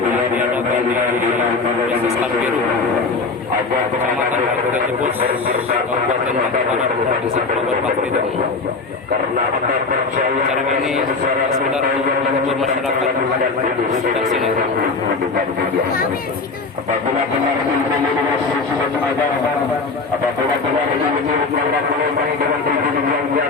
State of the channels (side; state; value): right; quieter; 4.1 dB